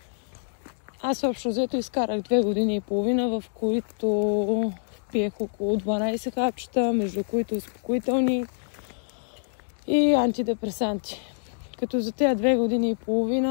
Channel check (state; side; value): silent; right; digital silence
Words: Аз общо взето изкарах 2 години и половина, в които пиех около 12 хапчета, между които успокоителни и антидепресанти. Като за тези 2 години и